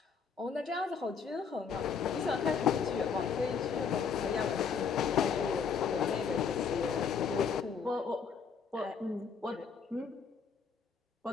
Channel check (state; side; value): quieter; right; 6.1 dB